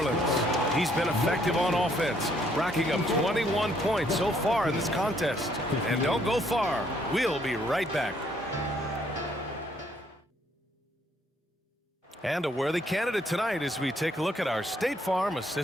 He's been effective on offense, racking up 21 points so far in this contest. And don't go far. We'll be right back. And a worthy candidate tonight as we take a look at our State Farm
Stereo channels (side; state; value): both; normal; correlation 0.68